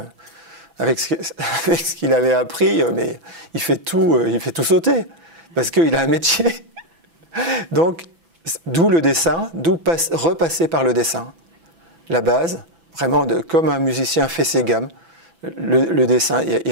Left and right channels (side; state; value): left; late; 6.0 ms